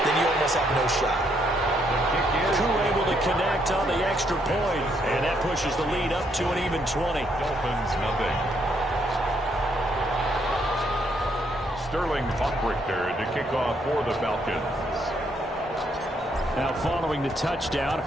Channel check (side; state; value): both; normal; correlation 0.73